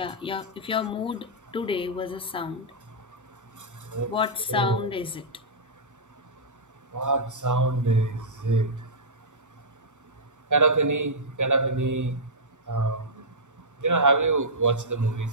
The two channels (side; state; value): both; normal; correlation -0.12